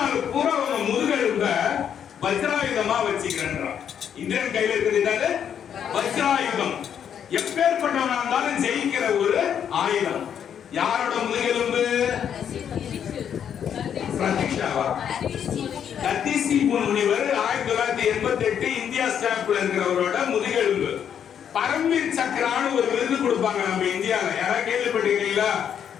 பூரா அவங்க முதுகெலும்ப வஜ்ராயுதமா வச்சுக்கிறேன்றான். இந்திரன் கையில இருக்கிறது வஜ்ராயுதம், எப்பேற்பட்டவனா இருந்தாலும் ஜெயிக்கிற ஒரு ஆயுதம். யாரோட முதுகெலும்பு? தத்திசி முனிவர் 1988 இந்தியா ஸ்டாம்ப்ல இருக்கிறவரோட முதுகெலும்பு. பரம்வீர் சக்கரான்னு ஒரு விருது கொடுப்பாங்க நம்ம இந்தியால, யாராவது கேள்விப்பட்டிருக்கீங்களா?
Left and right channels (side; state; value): right; quieter; 8.6 dB